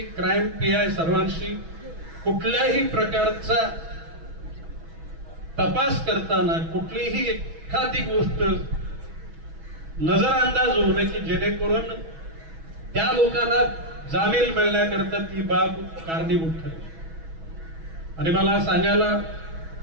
क्राईम पीआय सर्वांशी कुठल्याही प्रकारचा तपास करताना कुठलीही एखादी गोष्ट नजरअंदाज होऊ नये की जेणेकरून त्या लोकांना जामीन मिळण्याकरता ती बाब कारणीभूत ठरेल. आणि मला सांगायला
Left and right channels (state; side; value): late; left; 6.2 ms